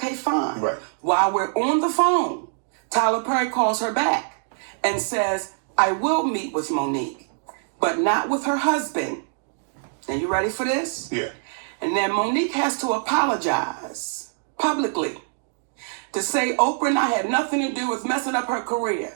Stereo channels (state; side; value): silent; left; digital silence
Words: fine. Right. While we're on the phone, Tyler Perry calls her back and says, I will meet with Monique, but not with her husband. Now, you ready for this? Yeah. And then Monique has to apologize publicly to say Oprah and I had nothing to do with messing up her